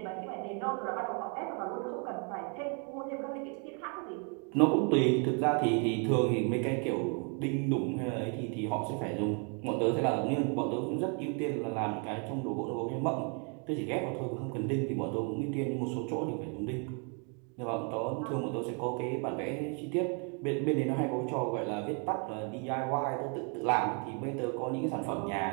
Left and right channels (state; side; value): quieter; left; 37.9 dB